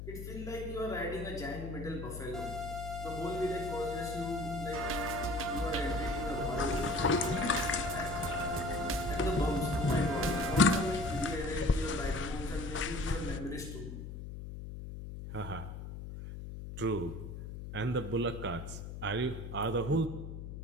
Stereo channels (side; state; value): left; noise; hum, 8 dB below the sound